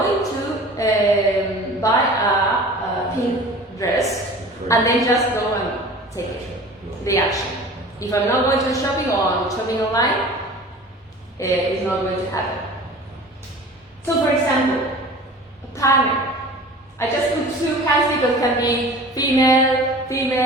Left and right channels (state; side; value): normal; both; correlation 0.41